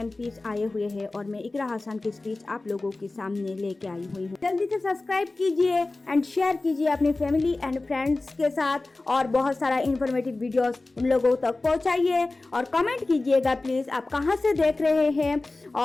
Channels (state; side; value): quieter; right; 3.2 dB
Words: आए हुए हैं और मैं इकरा हसन की स्पीच आप लोगों के सामने लेके आई हुई हूँ। जल्दी से सब्सक्राइब कीजिए एंड शेयर कीजिए अपनी फैमिली एंड फ्रेंड्स के साथ और बहुत सारा इंफॉर्मेटिव वीडियोस उन लोगों तक पहुँचाइए और कमेंट कीजिएगा प्लीज आप कहाँ से देख रहे हैं